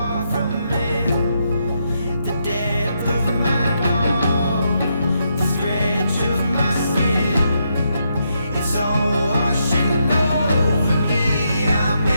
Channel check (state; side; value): inverted; both; correlation -0.80